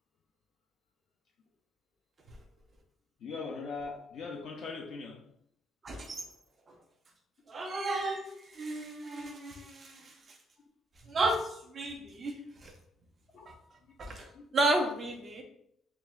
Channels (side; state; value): both; normal; correlation 0.72